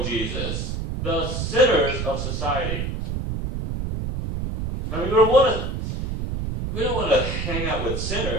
Jesus, the sinners of society. I mean, we don't want to hang out with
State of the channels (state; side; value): noise; right; rumble, 3 dB below the sound